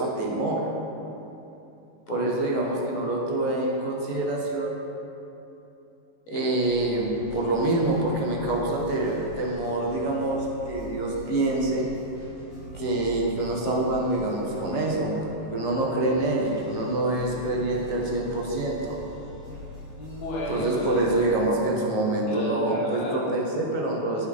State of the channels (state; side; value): late; right; 19 ms